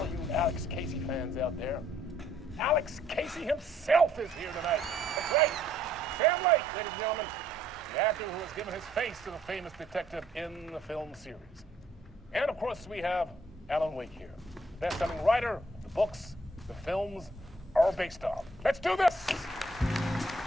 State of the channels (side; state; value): both; normal; correlation 0.65